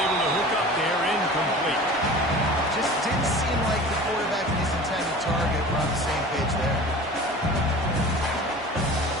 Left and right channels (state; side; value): normal; both; correlation 0.39